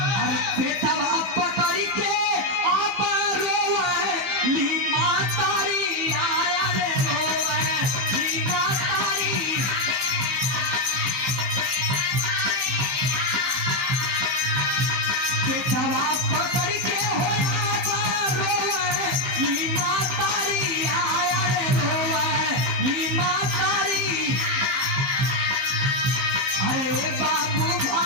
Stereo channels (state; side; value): late; left; 15 ms